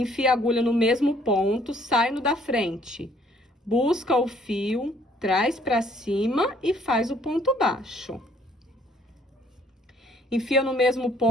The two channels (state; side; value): normal; both; correlation 0.62